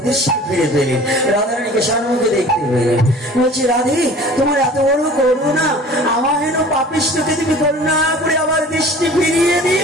ফিরে পেলেন। রাধারানীকে সম্মুখে দেখতে পেলেন। বলছি, রাধে, তোমার এত বড় করুণা, আমার হেন পাপিষ্ঠকে তুমি করুণা করে আবার দৃষ্টি ফিরিয়ে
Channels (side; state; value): both; normal; correlation 0.45